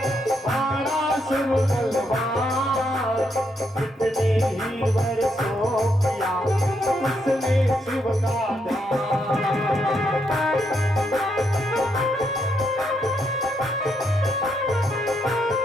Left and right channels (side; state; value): both; normal; correlation 0.78